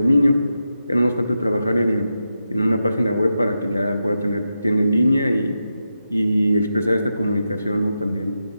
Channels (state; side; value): inverted; both; correlation -0.88